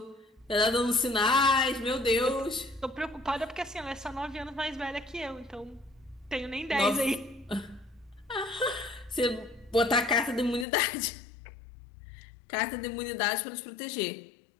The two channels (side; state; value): right; drops out; at 10.7 s